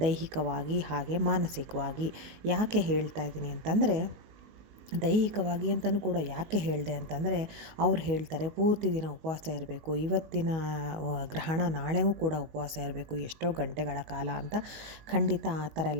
ದೈಹಿಕವಾಗಿ ಹಾಗೆ ಮಾನಸಿಕವಾಗಿ. ಯಾಕೆ ಹೇಳ್ತಾ ಇದ್ದೀನಿ ಅಂತಂದರೆ, ದೈಹಿಕವಾಗಿ ಅಂತಲೂ ಕೂಡ ಯಾಕೆ ಹೇಳಿದೆ ಅಂತಂದರೆ, ಅವ್ರು ಹೇಳ್ತಾರೆ ಪೂರ್ತಿ ದಿನ ಉಪವಾಸ ಇರಬೇಕು, ಇವತ್ತಿನ ಗ್ರಹಣ ನಾಳೆಗೂ ಕೂಡ ಉಪವಾಸ ಇರಬೇಕು ಎಷ್ಟೋ ಗಂಟೆಗಳ ಕಾಲ ಅಂತ. ಖಂಡಿತ ಆ ಥರ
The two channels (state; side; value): late; left; 19 ms